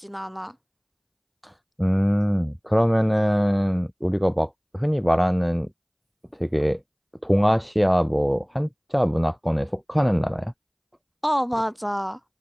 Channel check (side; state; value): both; identical; correlation 1.00